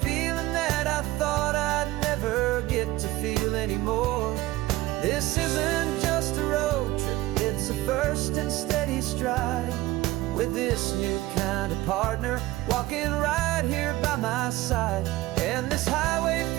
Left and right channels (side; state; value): left; quieter; 17.8 dB